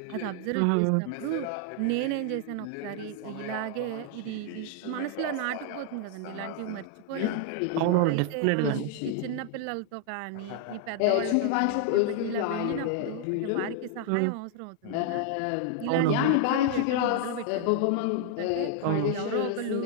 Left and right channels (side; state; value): both; different; correlation 0.00